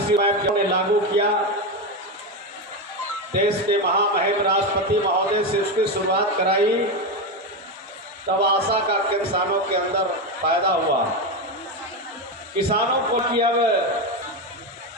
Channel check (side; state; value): both; normal; correlation 0.13